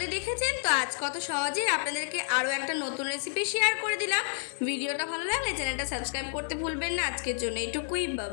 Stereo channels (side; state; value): right; silent; digital silence